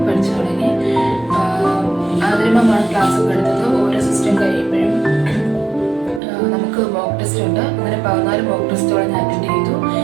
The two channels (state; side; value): drops out; left; at 6.2 s